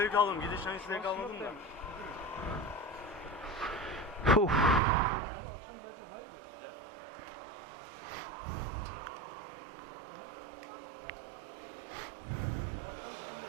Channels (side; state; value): left; drops out; at 4.8 s